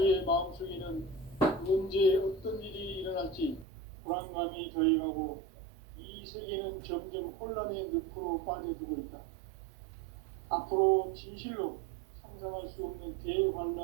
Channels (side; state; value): left; drops out; at 3.7 s